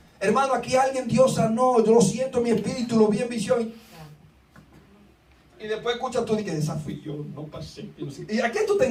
hermano, aquí alguien Dios sanó, yo lo siento en mi espíritu, lo vi en visión. Y después escuchas tú y dices: esa fui yo, no pasé. ¿Y a quién tú te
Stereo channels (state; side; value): identical; both; correlation 1.00